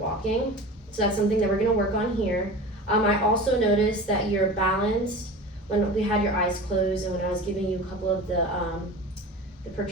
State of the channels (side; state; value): both; normal; correlation 0.34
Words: So that's something that we're going to work on here. I also noticed that your balance, when we had your eyes closed and when I was giving you a couple of the